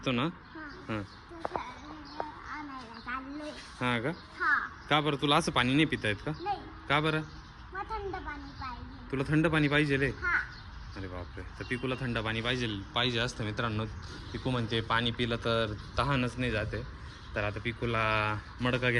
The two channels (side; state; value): both; identical; correlation 1.00